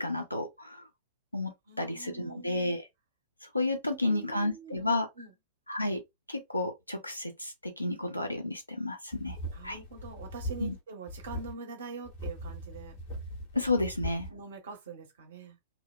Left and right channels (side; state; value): both; inverted; correlation -0.76